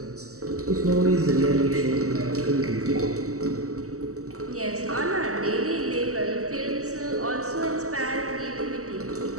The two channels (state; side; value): late; left; 0.65 ms